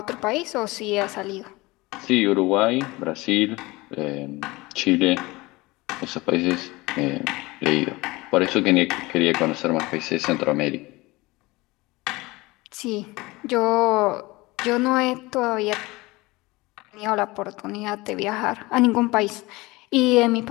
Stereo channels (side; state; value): right; quieter; 21.9 dB